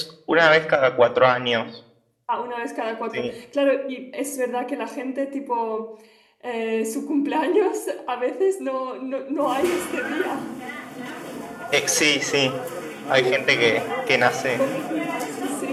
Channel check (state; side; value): identical; both; correlation 1.00